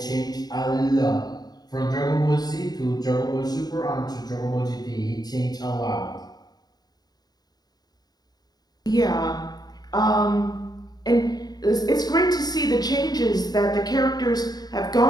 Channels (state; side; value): late; right; 0.19 ms